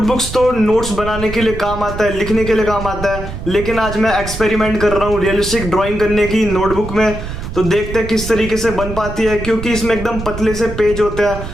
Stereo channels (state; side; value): noise; right; rumble, 8 dB below the sound